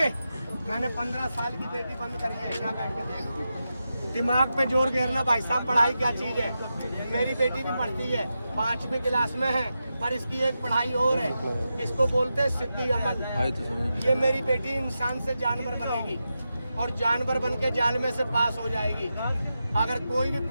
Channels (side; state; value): both; inverted; correlation -0.90